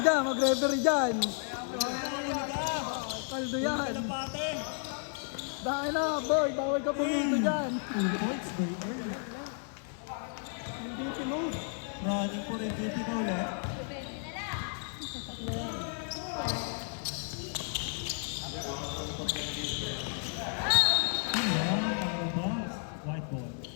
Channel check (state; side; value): silent; right; 56 dB below the other